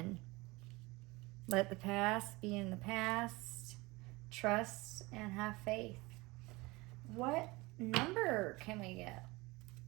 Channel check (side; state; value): left; quieter; 22.9 dB